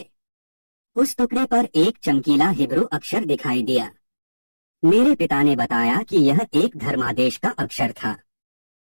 उस टुकड़े पर एक चमकीला हिब्रू अक्षर दिखाई दिया। मेरे पिता ने बताया कि यह एक धर्मादेश का अक्षर था।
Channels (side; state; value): both; inverted; correlation -1.00